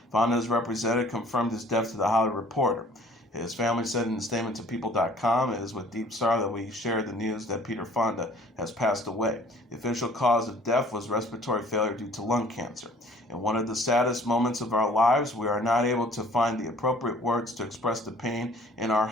Fonda's representative confirmed his death to The Hollywood Reporter. His family said in a statement to People.com, "It is with deep sorrow that we share the news that Peter Fonda has passed away. The official cause of death was respiratory failure due to lung cancer. In one of the saddest moments of our lives, we are not able to find the appropriate words to express the pain in our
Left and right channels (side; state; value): both; normal; correlation 0.54